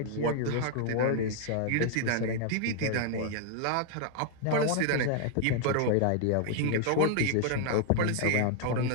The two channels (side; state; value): both; different; correlation 0.00